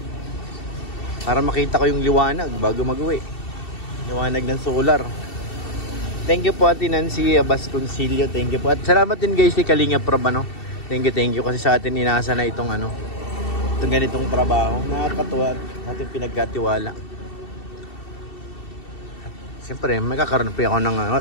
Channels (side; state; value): right; late; 2.7 ms